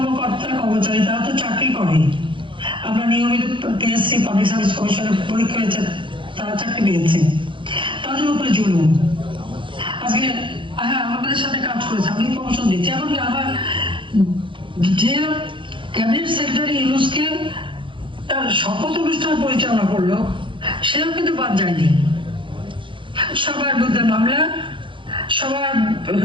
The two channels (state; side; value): late; left; 0.24 ms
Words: কর্মচারী তারা তো চাকরি করে, আমরা নিয়মিত পিএসসি পাবলিক সার্ভিস কমিশনের পরীক্ষা হয়েছে, তারা চাকরি পেয়েছে, তাদের উপরে জুলুম। আজকে হ্যাঁ আমাদের সাথে কাজ করেছে, আমি প্রমোশন দিচ্ছি, এমনকি আমার যে ক্যাবিনেট সেক্রেটারি ইউনূসকে তার শপথ অনুষ্ঠান পরিচালনা করলো সেও কিন্তু বাদ যায়নি। সবার বিরুদ্ধে মামলা, সবার